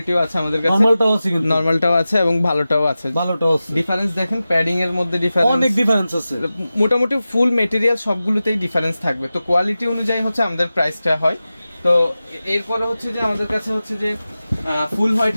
আছে আমাদের কাছে, নরমালটাও আছে, কিন্তু নরমালটাও আছে এবং ভালোটাও আছে। ডিফারেন্স দেখেন, প্যাডিং এর মধ্যে অনেক ডিফারেন্স আছে। মোটামুটি ফুল মেটেরিয়াল সবগুলোতেই ডিফারেন্স থাকবে। তো কোয়ালিটি অনুযায়ী হচ্ছে আমাদের প্রাইসটা হয়। তো এরপরে হচ্ছে যে আমাদের কাছে হচ্ছে যে ফুল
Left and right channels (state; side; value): inverted; both; correlation -0.95